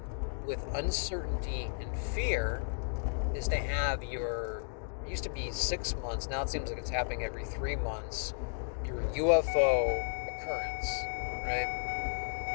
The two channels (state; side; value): silent; right; digital silence